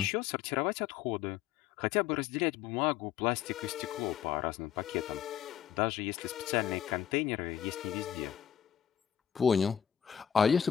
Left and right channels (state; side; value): quieter; right; 9.3 dB